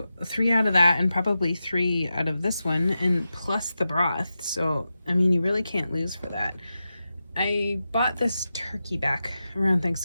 3 out of that and probably 3 out of this one, and plus the broth. So, I mean, you really can't lose for that. I bought this turkey back around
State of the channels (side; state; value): both; inverted; correlation -0.91